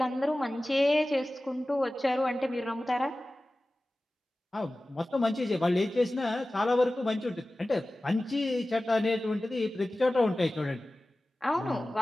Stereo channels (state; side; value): normal; both; correlation 0.96